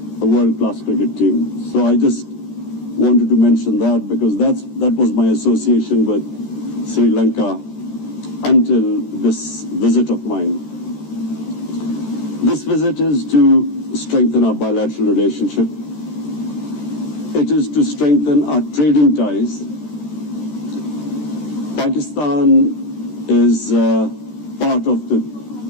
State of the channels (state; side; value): late; right; 13 ms